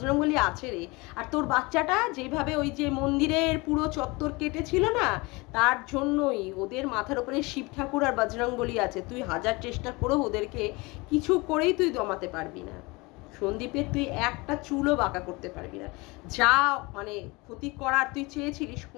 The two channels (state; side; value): quieter; right; 24.9 dB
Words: আছে রে, আর তোর বাচ্চাটা যেভাবে ওই যে মন্দিরের পুরো চত্বর কেটেছিল না, তার জন্যই ওদের মাথার উপরে শিব ঠাকুর আর বজরংবলী আছে। তুই হাজার চেষ্টা করেও ওদেরকে কিছু করেই তুই দমাতে পারবি না। সন্দীপের তুই একটা চুলও বাঁকা করতে পারবি না। যা মানে ক্ষতি করার তুই চেয়েছিলিস,